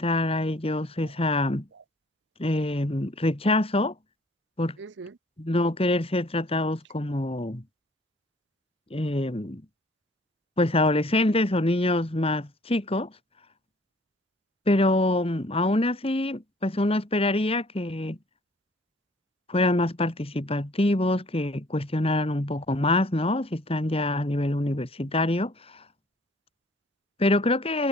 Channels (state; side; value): normal; both; correlation 0.56